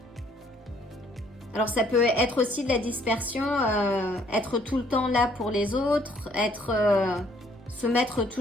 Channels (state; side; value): normal; both; correlation 0.63